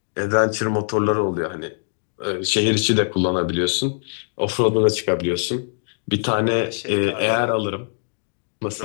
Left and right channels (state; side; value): silent; right; digital silence